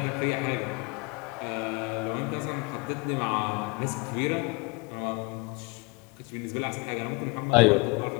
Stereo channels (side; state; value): right; quieter; 28.3 dB